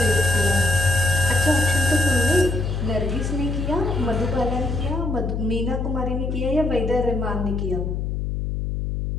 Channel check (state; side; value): noise; left; hum, 2 dB below the sound